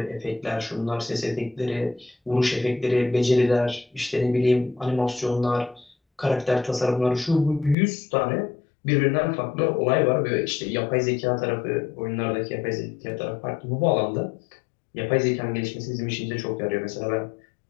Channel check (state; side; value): drops out; right; at 7.8 s